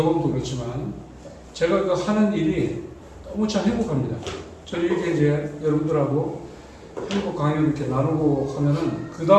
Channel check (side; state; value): both; identical; correlation 1.00